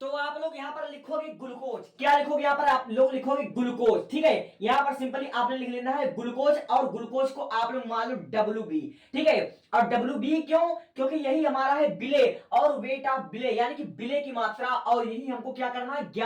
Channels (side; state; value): both; identical; correlation 1.00